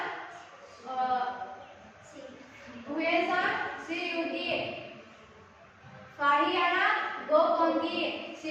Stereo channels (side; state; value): both; identical; correlation 1.00